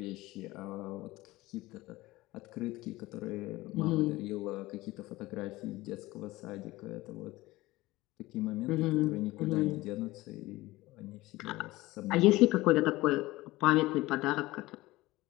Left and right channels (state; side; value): quieter; right; 19.0 dB